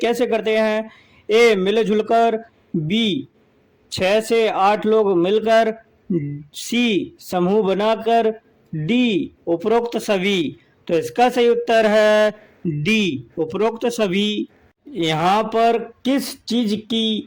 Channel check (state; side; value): identical; both; correlation 1.00